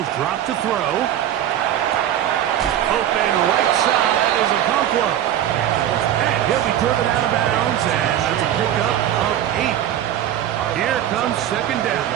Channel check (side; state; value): left; quieter; 11.2 dB